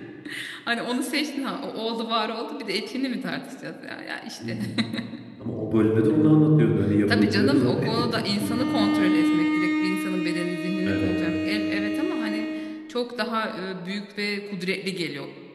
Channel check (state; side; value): identical; both; correlation 1.00